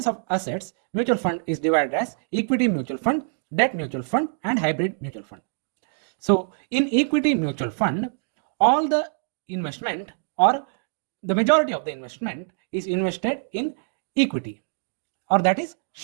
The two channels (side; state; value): left; silent; digital silence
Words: of assets, mutual fund is divided as equity mutual fund, debt mutual fund, and hybrid mutual fund. So in equity mutual fund, all the investment or the majority of the investment is invested in equity, or that is